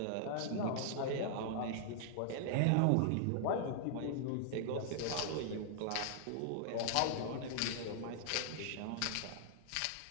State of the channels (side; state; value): both; different; correlation -0.01